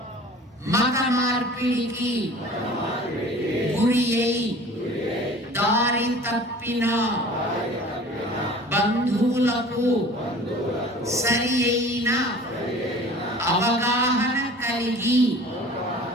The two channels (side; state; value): both; normal; correlation 0.44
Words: మత మార్పిడికి గురి అయి దారి తప్పిన బంధువులకు సరి అయిన అవగాహన కలిగి